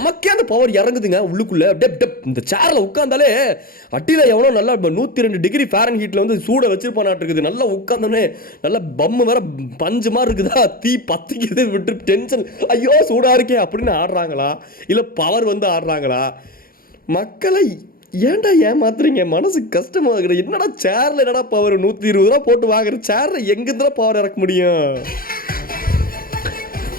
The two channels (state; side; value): late; right; 0.42 ms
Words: அந்த பவர் இறங்குதுங்க உள்ளுக்குள்ள. இந்த சேர்ல உட்காந்தாலே அட்டில எவனோ நல்லா 102 டிகிரி ஃபாரன்ஹீட்ல வந்து சூட வச்சிருப்பானாட்டு இருக்குது. நல்லா உட்காந்தோன்னே நல்லா பம்மு வேற பஞ்சு மாதிரி இருக்குதா, தீ பத்திக்குது, விட்டு டென்ஷன், ஐயோ சூடா இருக்கே அப்படின்னு ஆடுறாங்களா, இல்ல பவர் வந்து ஆடுறாங்களா? மக்களை ஏன்டா ஏமாத்துறீங்க? மனசு கஷ்டமா இருக்குது. என்னடா சேர்ல என்னடா பவர், 120 ரூபா போட்டு வாங்குற சேர்ல எங்கிருந்தா பவர் இறக்க முடியும்?